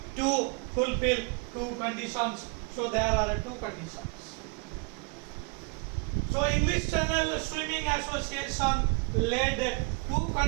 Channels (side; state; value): left; quieter; 30.7 dB